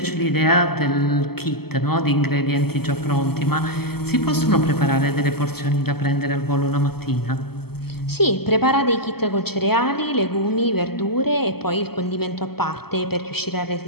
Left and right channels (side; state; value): right; late; 0.96 ms